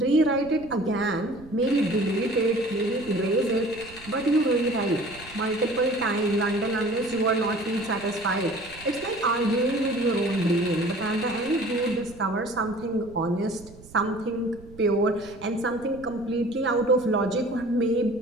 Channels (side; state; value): right; noise; rumble, 20 dB below the sound